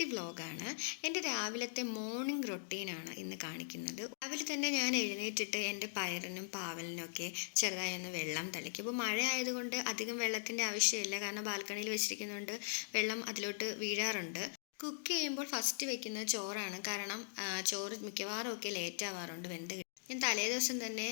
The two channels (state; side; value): silent; right; digital silence